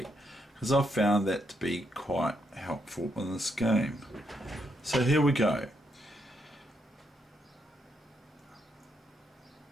because I've found that to be quite helpful in this game. So here we go.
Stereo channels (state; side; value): normal; both; correlation 0.78